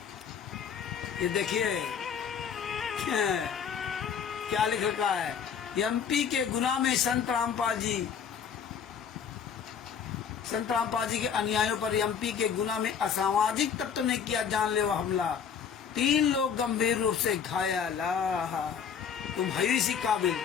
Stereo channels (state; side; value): quieter; right; 7.2 dB